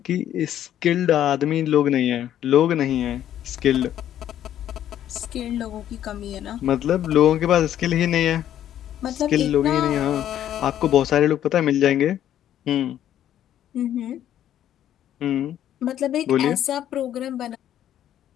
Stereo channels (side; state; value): right; quieter; 11.1 dB